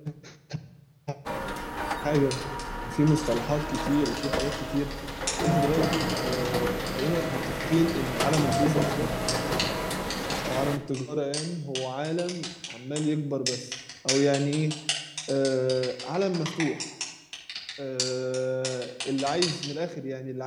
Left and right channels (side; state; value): both; identical; correlation 1.00